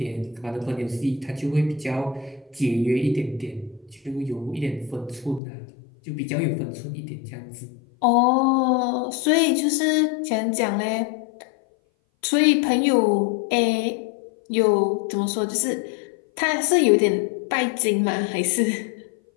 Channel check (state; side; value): drops out; right; at 5.4 s